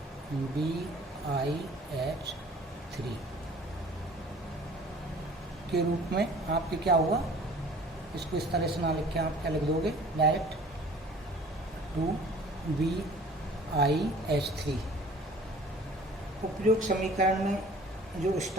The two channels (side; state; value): both; normal; correlation 0.49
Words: BiH3 के रूप में आपके क्या हुआ। इसको इस तरह से ना लिख के आप क्या लिख दोगे डायरेक्ट 2BiH3। उपयुक्त समीकरण में जो